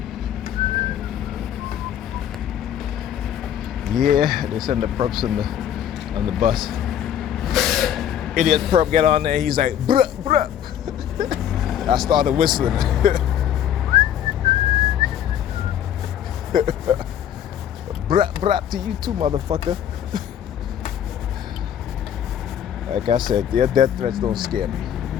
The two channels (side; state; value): right; quieter; 10.0 dB